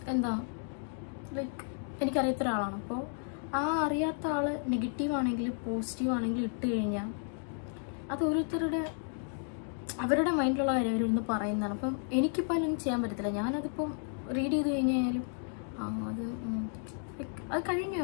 എന്താ ലൈക്ക് എനിക്കറിയാത്ത ഒരാളാണ്. അപ്പോൾ ആ അറിയാത്ത ആൾ നെഗറ്റീവ് ആണെങ്കിലും പോസിറ്റീവ് ആണെങ്കിലും ഇട്ട് കഴിഞ്ഞാൽ അത് ഓരോരുത്തരുടെ അവരുടെ മൈൻഡിലുള്ള കാര്യം അവരിന്ന് പറയുന്നതാണ്. അപ്പം എനിക്കിപ്പോൾ അതിലൊന്നും ചെയ്യാൻ പറ്റത്തില്ല. ഞാനതിപ്പം റീഡ് ചെയ്ത് കഴിഞ്ഞാലും അത് കഴിഞ്ഞു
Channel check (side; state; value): right; silent; 56 dB below the other